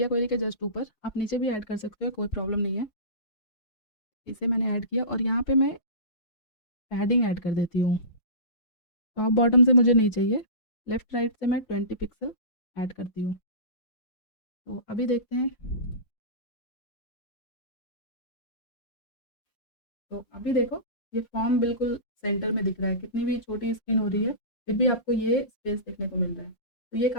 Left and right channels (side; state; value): right; late; 5.7 ms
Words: क्वेरी के जस्ट ऊपर, आप नीचे भी ऐड कर सकते हो, कोई प्रॉब्लम नहीं है। इसे मैंने ऐड किया और यहाँ पे मैं पैडिंग ऐड कर देती हूँ। टॉप बॉटम से मुझे नहीं चाहिए, लेफ़्ट राइट से मैं 20 पिक्सल ऐड करती हूँ। तो अभी देखते हैं, तो अभी देखो ये फॉर्म बिल्कुल सेंटर में दिख रहा है, कितनी भी छोटी स्क्रीन हो रही है फिर भी आपको ये स्पेस देखने को मिल रहा है। तो ये